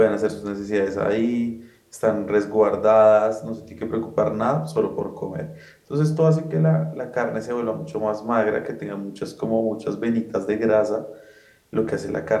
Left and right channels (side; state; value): both; identical; correlation 1.00